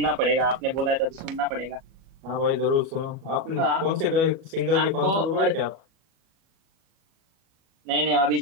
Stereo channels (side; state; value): left; late; 37 ms